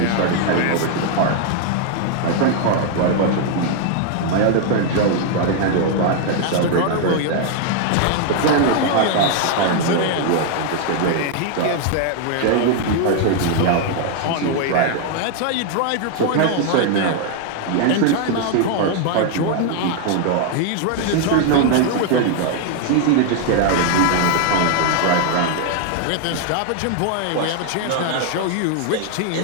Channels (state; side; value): different; both; correlation 0.00